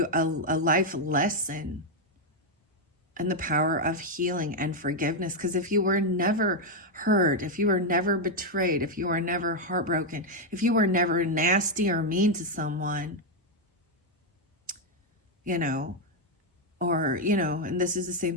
a life lesson and the power of healing and forgiveness. Because if you were never hurt, if you were never betrayed, if you were never heartbroken, if you were never nasty or mean to someone, you know, or, you know, and this is the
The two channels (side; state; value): both; normal; correlation 0.01